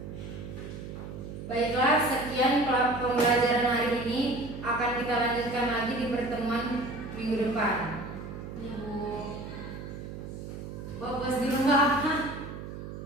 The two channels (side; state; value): right; noise; hum, 9 dB below the sound